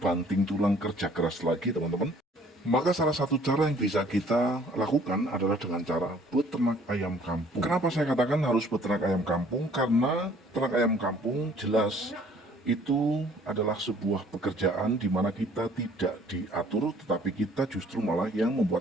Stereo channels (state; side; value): normal; both; correlation 0.57